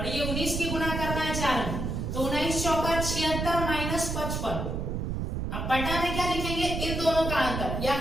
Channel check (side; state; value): right; noise; rumble, 2 dB below the sound